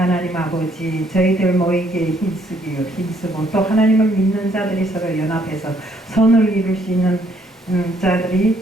아버지, 저희들 모이기에 힘쓰고 또 하나님을 믿는 자들이 서로 연합해서 선을 이룰 수 있는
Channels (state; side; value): normal; both; correlation 0.67